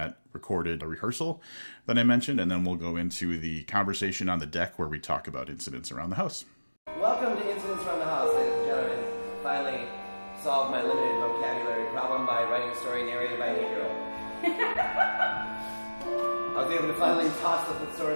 recorded rehearsal that I mentioned, and then we'll go into the conversation on the deck where we talk about Incidents Around the House. Welcome to Incidents Around the House, ladies and gentlemen. Finally solved my limited vocabulary problem by writing a story narrated by an 8-year-old. I was able to finally toss the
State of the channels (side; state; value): both; inverted; correlation -1.00